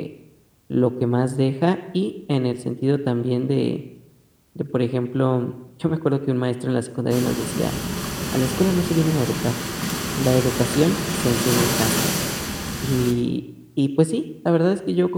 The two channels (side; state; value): both; identical; correlation 1.00